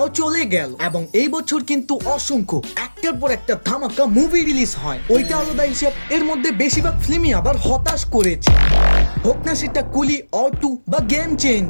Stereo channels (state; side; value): inverted; both; correlation -1.00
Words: চলে গেল এবং এই বছর কিন্তু অসংখ্য একটার পর একটা ধামাকা মুভি রিলিজ হয়। ওইটা আলাদা হিসাব, এর মধ্যে বেশিরভাগ ফিল্মই আবার হতাশ করেছে, হোক না সেটা কুলি অর টু বা গেম